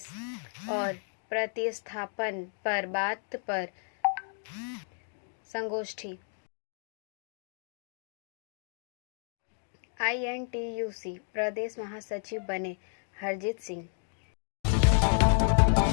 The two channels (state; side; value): silent; right; 56 dB below the other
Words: और प्रतिस्थापन पर बात पर संगोष्ठी। INTUC प्रदेश महासचिव बने हरजीत सिंह।